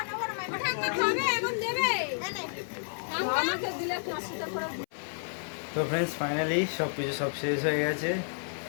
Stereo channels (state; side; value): silent; right; 57 dB below the other